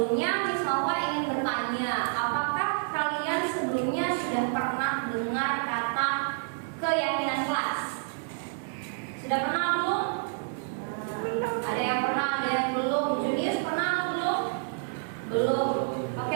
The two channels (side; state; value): left; silent; 59 dB below the other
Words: Miss Nova ingin bertanya, apakah kalian sebelumnya sudah pernah dengar kata keyakinan kelas? Sudah pernah belum? Ada yang pernah, ada yang belum. Junius pernah atau belum? Belum.